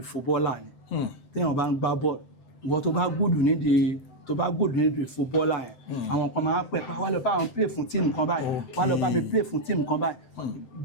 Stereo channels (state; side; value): late; right; 7.8 ms